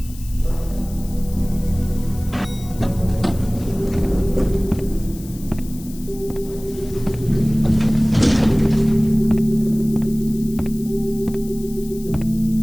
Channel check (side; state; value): left; noise; hiss, 19 dB below the sound